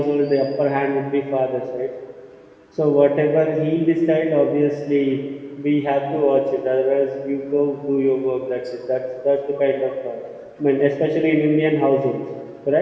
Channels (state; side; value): identical; both; correlation 1.00